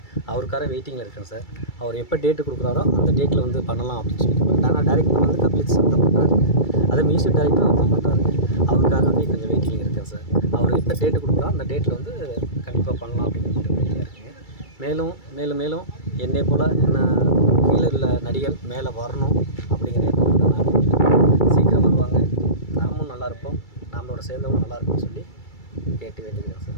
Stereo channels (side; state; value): right; late; 2.3 ms